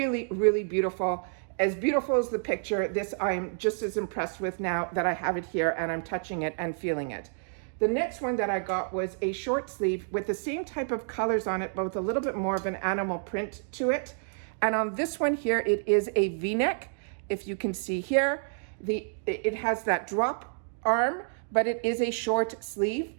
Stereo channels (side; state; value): left; silent; digital silence